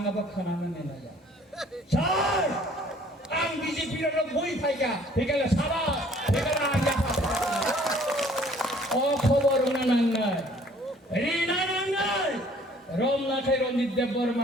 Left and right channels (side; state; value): both; normal; correlation 0.56